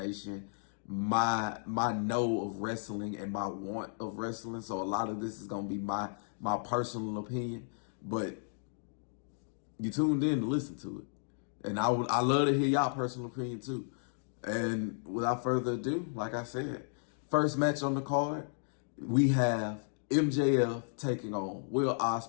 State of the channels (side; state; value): right; silent; digital silence